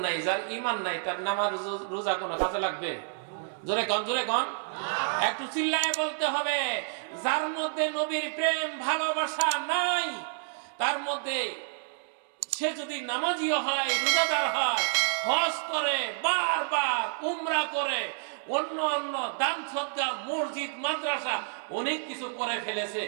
নাই, যার ঈমান নাই তার নামাজ রোজা কোন কাজে লাগবে? জোরে কোন, জোরে কোন, একটু চিল্লায় বলতে হবে। যার মধ্যে নবীর প্রেম ভালোবাসা নাই, তার মধ্যে সে যদি নামাজিও হয়, রোজাদার হয়, হজ করে, বারবার উমরা করে, অন্য অন্য দান সদকা, মসজিদ, মাদ্রাসা অনেক কিছু করে ফেলেছে,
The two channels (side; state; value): left; silent; digital silence